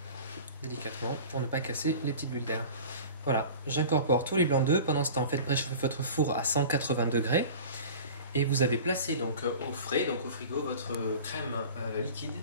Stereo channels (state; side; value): inverted; both; correlation -0.38